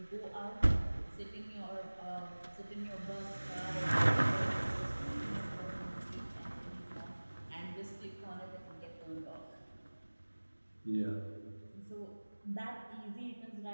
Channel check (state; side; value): inverted; both; correlation -1.00